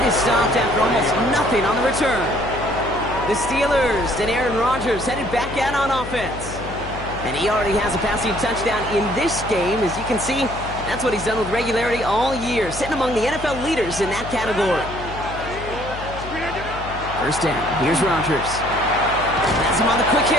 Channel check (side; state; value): left; noise; hum, 10 dB below the sound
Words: is stopped after almost nothing on the return. The Steelers and Aaron Rodgers headed back out on offense. And he already has a passing touchdown in this game. As you can see, that's what he's done with regularity all year, sitting among the NFL leaders in that category. First down, here's Rodgers. That's him on the quick